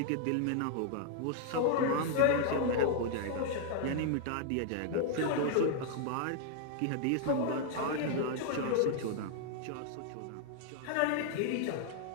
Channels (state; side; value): different; both; correlation 0.00